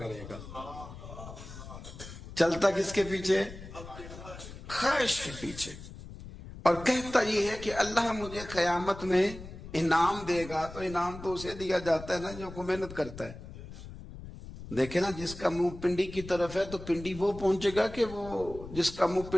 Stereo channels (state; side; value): noise; left; rumble, 13 dB below the sound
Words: گا. چلتا کس کے پیچھے؟ خواہش کے پیچھے. اور کہتا یہ ہے کہ اللہ مجھے قیامت میں انعام دے گا. تو انعام تو اسے دیا جاتا ہے نا جو کو محنت کرتا ہے. دیکھیں نا، جس کا منہ پنڈی کی طرف ہے تو پنڈی وہ پہنچے گا کہ وہ جس کا منہ